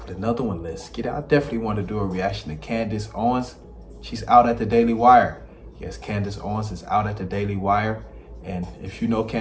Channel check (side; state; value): both; identical; correlation 1.00